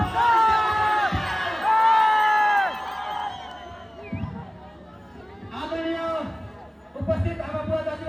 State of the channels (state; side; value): normal; both; correlation 0.97